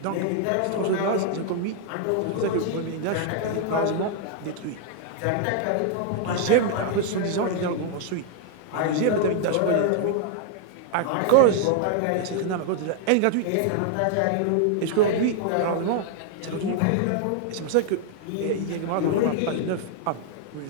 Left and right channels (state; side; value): different; both; correlation 0.00